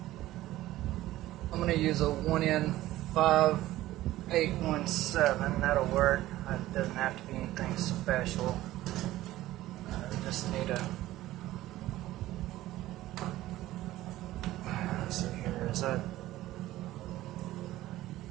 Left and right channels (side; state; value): left; quieter; 15.7 dB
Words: I'm going to use a 1N5817. That'll work. It doesn't have to be anything special. I just need a Is that